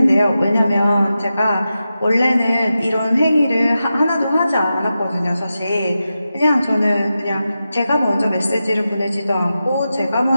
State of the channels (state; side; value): inverted; both; correlation -0.91